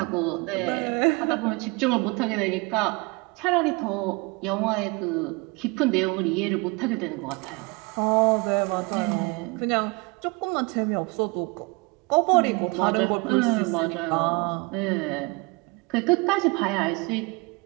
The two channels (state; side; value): quieter; left; 26.9 dB